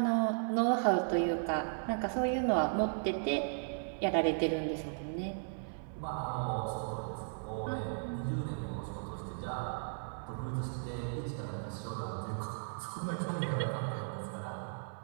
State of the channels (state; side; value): silent; left; 54 dB below the other